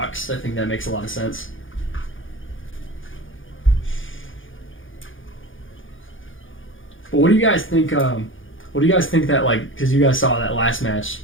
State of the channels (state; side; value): late; right; 0.58 ms